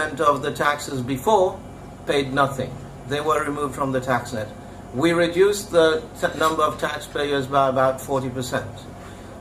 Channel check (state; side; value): identical; both; correlation 1.00